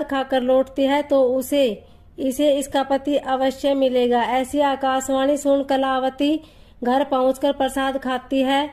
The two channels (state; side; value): identical; both; correlation 1.00